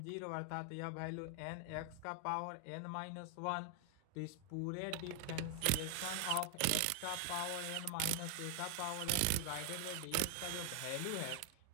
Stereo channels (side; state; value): both; different; correlation 0.00